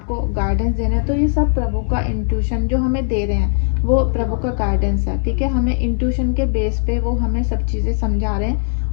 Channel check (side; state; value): right; silent; 67 dB below the other